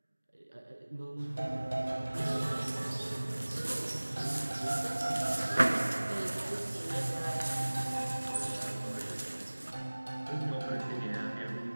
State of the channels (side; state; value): both; inverted; correlation -1.00